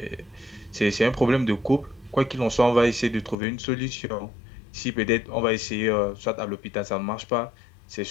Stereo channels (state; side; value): drops out; right; at 3.4 s